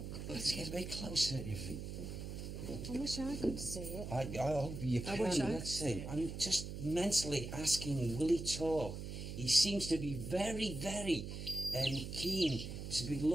Let's get a bit closer if we... I wish I could see it. I hope you can. Let's see. I'm just mentally asking, will he talk? He seems to be very, very keen to be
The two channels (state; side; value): noise; right; hum, 7 dB below the sound